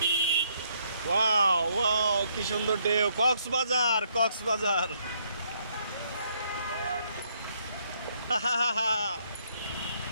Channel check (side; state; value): both; inverted; correlation -0.70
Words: ওয়াও ওয়াও, কি সুন্দর ঢেউ! কক্সবাজার, কক্সবাজার।